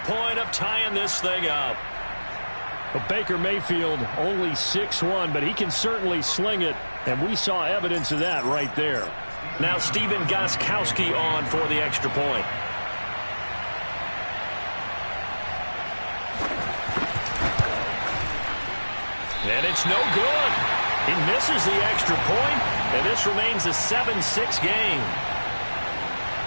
point of tying this thing up. Well, Baker Mayfield only 6'1", but he can certainly sling it, and we saw evidence of that right there. Now Stephen Gostkowski on for the extra point. And it's no good. He misses the extra point, and this remains a 7-6 game.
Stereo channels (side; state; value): both; inverted; correlation -1.00